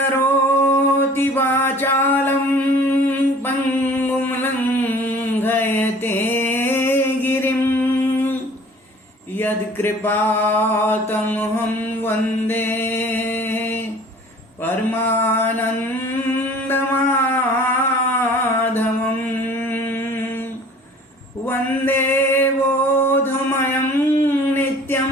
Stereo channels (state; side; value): normal; both; correlation 0.49